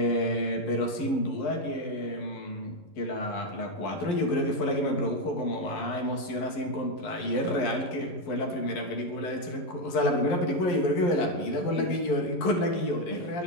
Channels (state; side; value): late; right; 11 ms